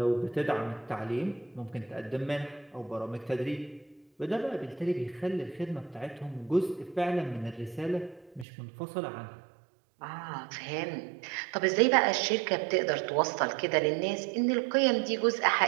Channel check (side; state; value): left; drops out; at 8.5 s